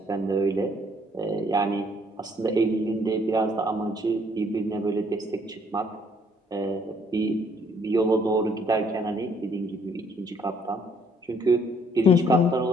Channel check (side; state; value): both; normal; correlation 0.64